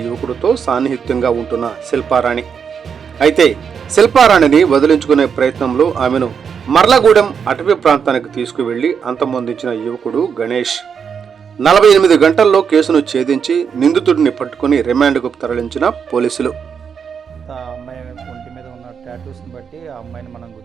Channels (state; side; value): quieter; left; 6.8 dB